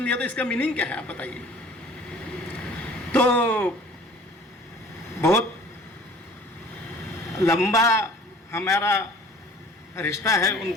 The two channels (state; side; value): normal; both; correlation 0.49